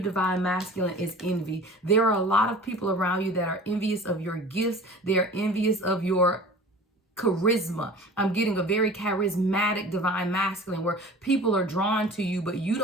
masculine, is envy. There are a lot of people around you that are envious of your gifts. They are envious of your charisma. I'm getting a very charismatic divine masculine where people are drawn to you, but you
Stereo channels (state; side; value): normal; both; correlation 0.41